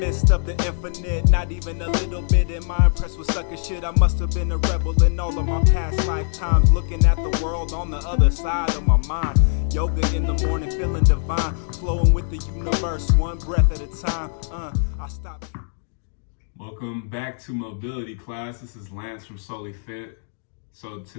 of the infinite. Not even a little bit am I impressed with sucker shit. I must have been a rebel in all of my past lifetimes, looking at the world on the other side of my mind. Yoga in the morning, feeling divine, flowing with the universe, one breath at a time. I stop. Welcome back to mobility class. This is Lance from Solely Fit. So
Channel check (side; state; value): right; silent; digital silence